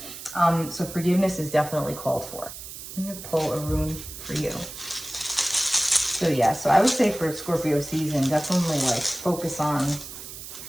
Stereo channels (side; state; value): right; noise; hiss, 12 dB below the sound